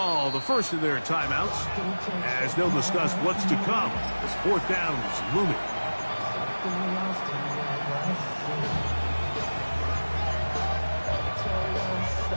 the first of their timeouts as they'll discuss what's to come as fourth down is looming.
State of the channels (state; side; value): inverted; both; correlation -1.00